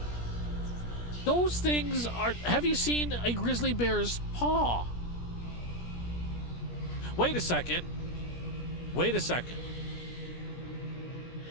Those things are... Have you seen a grizzly bear's paw? Wait a second.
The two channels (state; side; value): late; right; 17 ms